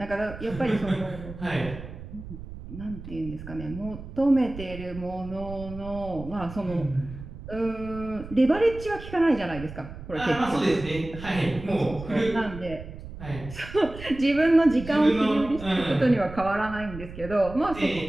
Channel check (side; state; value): right; noise; rumble, 13 dB below the sound